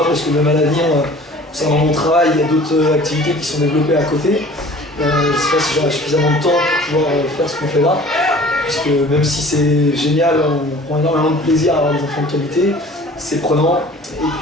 parce que même à l'avenir, concernant mon travail, il y a d'autres activités qui sont développées à côté. Je ne sais pas si j'aurai suffisamment de temps pour pouvoir faire ce qu'on fait là. Puisque même si c'est génial, on prend énormément de plaisir à avoir des enfants de qualité, c'est prenant. Et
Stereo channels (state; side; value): normal; both; correlation 0.47